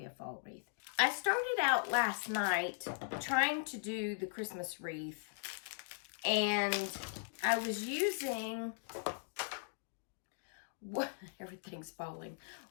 a fall wreath. I started out last night trying to do the Christmas wreath, and I was using... everything's falling.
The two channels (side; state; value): right; silent; digital silence